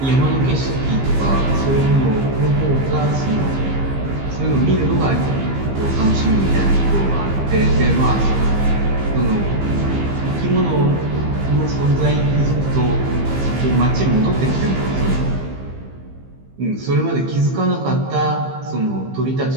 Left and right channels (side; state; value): left; late; 15 ms